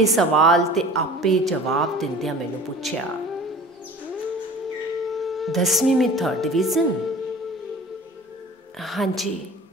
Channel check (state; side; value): normal; both; correlation 0.42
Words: ਸਵਾਲ ਤੇ ਆਪੇ ਜਵਾਬ ਦਿੰਦਿਆਂ ਮੈਨੂੰ ਪੁੱਛਿਆ, 10ਵੀਂ में 3rd डिवीज़न? हाँ जी।